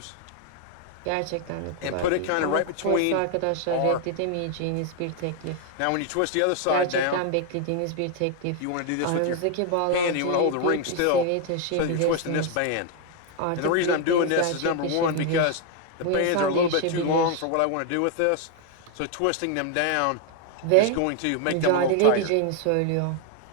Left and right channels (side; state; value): both; different; correlation 0.00